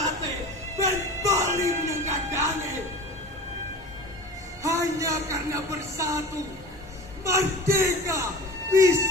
ben bali menyanggadange. Hanya karena bersatu, merdeka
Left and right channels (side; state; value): both; normal; correlation 0.36